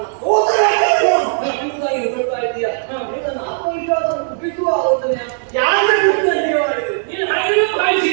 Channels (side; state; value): left; silent; digital silence